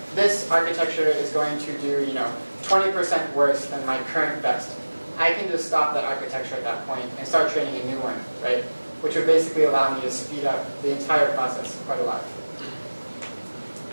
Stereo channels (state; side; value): inverted; both; correlation -1.00